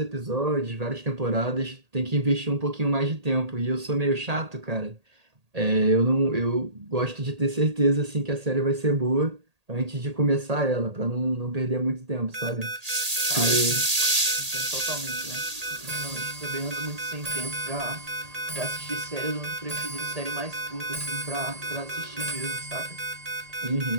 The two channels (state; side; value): late; left; 1.8 ms